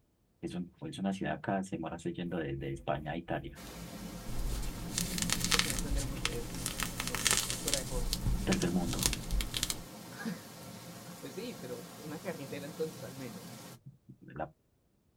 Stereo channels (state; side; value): identical; both; correlation 1.00